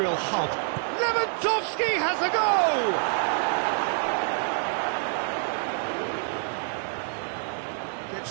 hub. Lewandowski has a go!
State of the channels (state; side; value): silent; left; 58 dB below the other